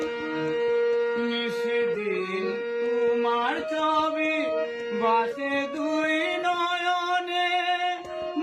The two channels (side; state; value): both; identical; correlation 1.00